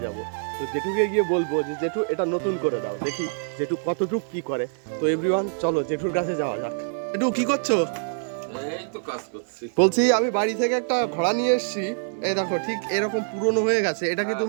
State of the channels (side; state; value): left; silent; digital silence